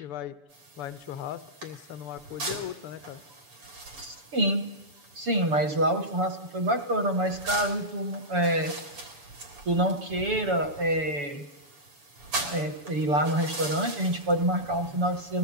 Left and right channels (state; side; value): late; left; 7.0 ms